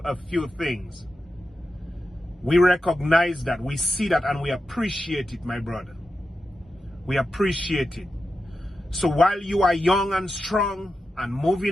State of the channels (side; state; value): both; normal; correlation 0.90